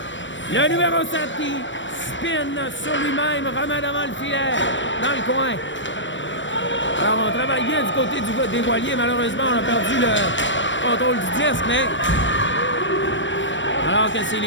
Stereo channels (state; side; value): late; right; 0.54 ms